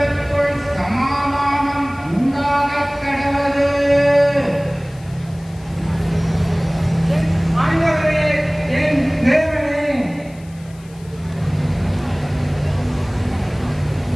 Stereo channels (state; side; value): noise; left; hiss, 26 dB below the sound